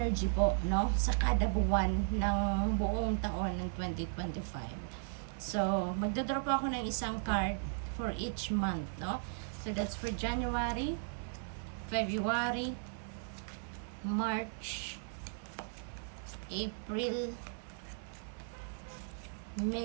po, no, sa kada buwan ng buong taon ng 2025. So magdodraw po ako ng isang card for each month, no. So that's for January, February, March, April,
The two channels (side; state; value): left; silent; 54 dB below the other